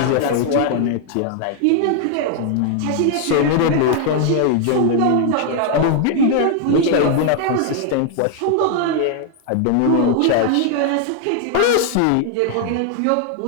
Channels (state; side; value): different; both; correlation 0.00